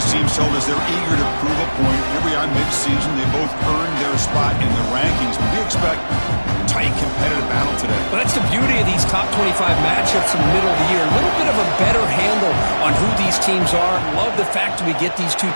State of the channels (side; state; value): both; inverted; correlation -1.00